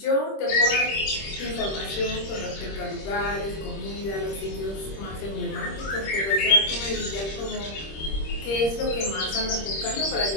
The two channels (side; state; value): right; late; 26 ms